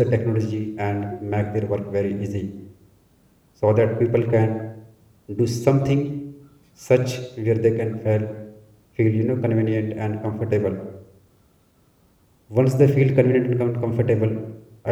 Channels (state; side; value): identical; both; correlation 1.00